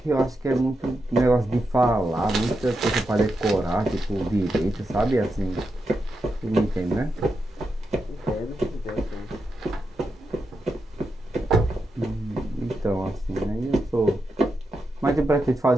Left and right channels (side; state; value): both; normal; correlation 0.86